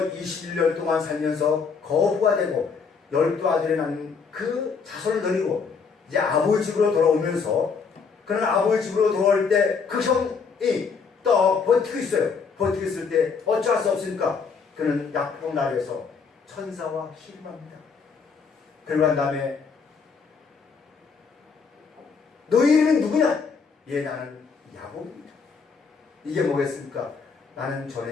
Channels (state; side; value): quieter; right; 5.4 dB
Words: 21년 동안 살면서 거부가 되고 12아들이 낳는 그 자손을 데리고 이제 아버지 집으로 돌아오면서 그는 아버지 집으로 돌아올 때 그 형이 또 버티고 있어요. 버티고 있을 때 어쩔 수 없으니까 그는 약봉 나라에서 천사와 씨름합니다. 그러고 난 다음에 너희 이름은 누구냐? 예, 나는 야곱입니다. 이게 뭐겠습니까? 나는 전에